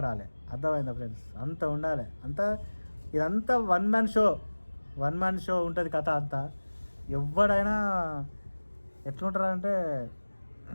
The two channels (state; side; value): inverted; both; correlation -1.00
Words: అర్థమైందా ఫ్రెండ్స్? అంత ఉండాలి. ఇదంతా వన్ మ్యాన్ షో ఉంటుంది కథ అంతా. ఎవడైనా ఎట్లుంటారంటే